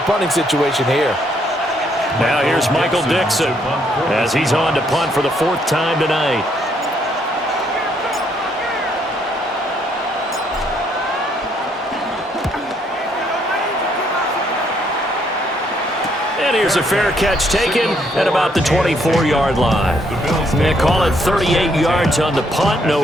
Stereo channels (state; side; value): normal; both; correlation 0.71